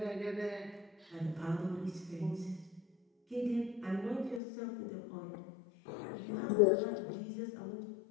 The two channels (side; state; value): right; drops out; at 4.4 s